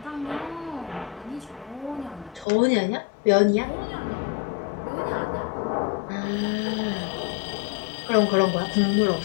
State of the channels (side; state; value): right; drops out; at 2.5 s